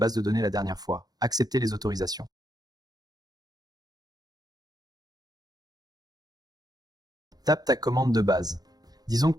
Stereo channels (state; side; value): late; left; 0.19 ms